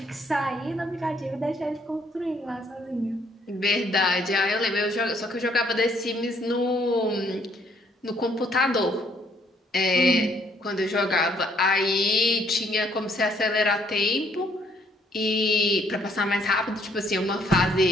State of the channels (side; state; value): both; normal; correlation 0.66